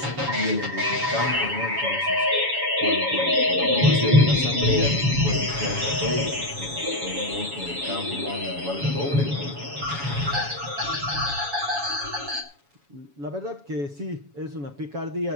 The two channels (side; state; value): left; late; 7.1 ms